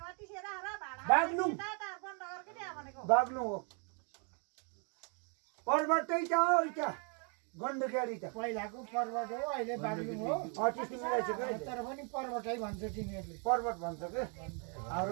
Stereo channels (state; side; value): quieter; left; 39.0 dB